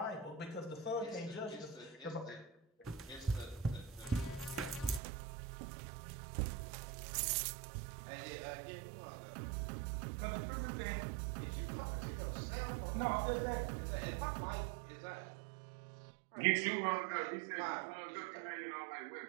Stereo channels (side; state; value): left; drops out; at 5.0 s